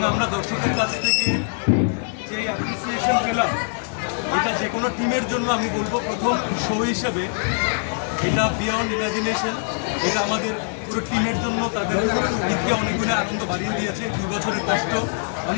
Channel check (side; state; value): right; silent; 63 dB below the other